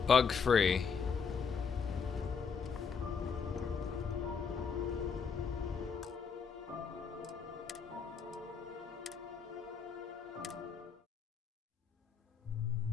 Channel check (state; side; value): quieter; right; 6.0 dB